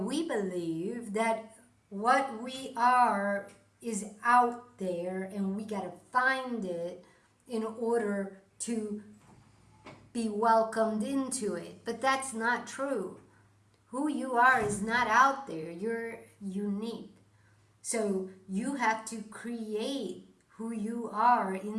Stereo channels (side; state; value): both; identical; correlation 1.00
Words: we believe that what we are is out there and we got to find it in order to be welcomed into it. But that's not true. Who you are is not out there. You're unique. So you have to create who you are